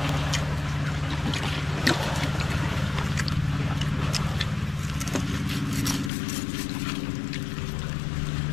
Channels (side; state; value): right; drops out; at 6.1 s